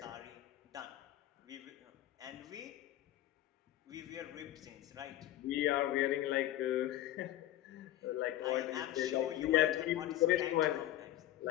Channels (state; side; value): quieter; right; 13.6 dB